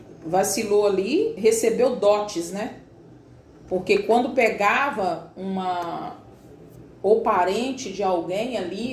vacilou ali, recebeu dotes, né? Porque quando pegava ou parente de alguém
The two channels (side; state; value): both; identical; correlation 1.00